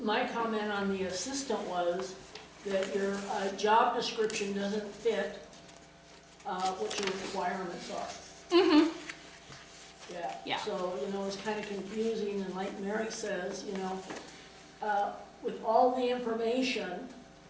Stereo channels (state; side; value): identical; both; correlation 1.00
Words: comment on the assistant was that your job description doesn't fit what your requirements are. Mm-hmm. Yeah. So, it's kind of confusing, and like Mary says, with all the information